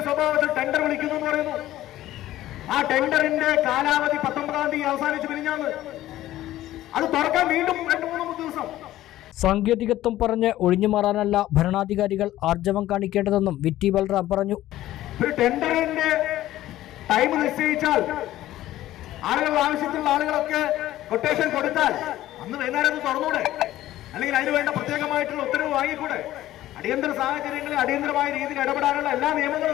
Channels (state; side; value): quieter; right; 14.5 dB